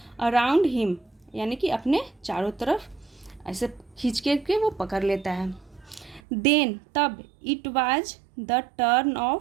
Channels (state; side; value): drops out; left; at 6.2 s